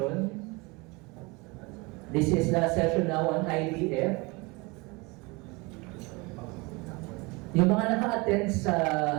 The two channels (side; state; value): left; quieter; 26.3 dB